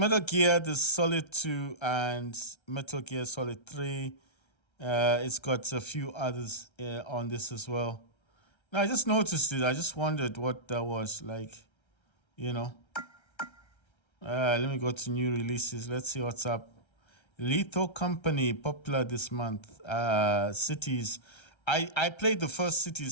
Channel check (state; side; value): late; right; 1.3 ms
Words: Gear, there's Solid 2 and Metal Gear Solid 3. It's got a few others on this as well. Now I just noticed it. I just wondered what that was like, you know. Let me go to new releases. Let's see what's up. Lethal Company, popular this month. Cities. I played the first